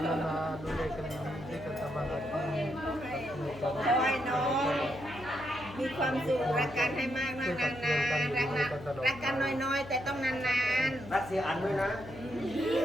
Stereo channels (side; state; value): left; noise; hum, 15 dB below the sound